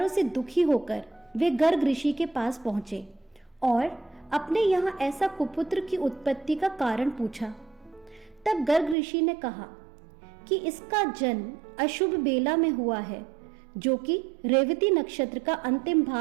से दुखी होकर वे गर्ग ऋषि के पास पहुंचे और अपने यहाँ ऐसा कुपुत्र की उत्पत्ति का कारण पूछा। तब गर्ग ऋषि ने कहा कि इसका जन्म अशुभ बेला में हुआ है, जो कि रेवती नक्षत्र का अंतिम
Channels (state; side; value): drops out; left; at 9.0 s